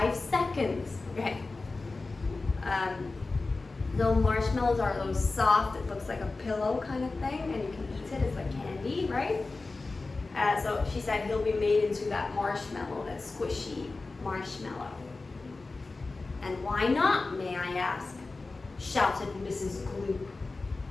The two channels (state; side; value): quieter; right; 3.6 dB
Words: seconds. Okay. The marshmallows are those soft, it looks like a pillow kind of thing, and you can eat it, it's like candy, right? So she said he'll be made into that marshmallow, that squishy marshmallow. "And why not, may I ask?" shouted Mrs. Gloop.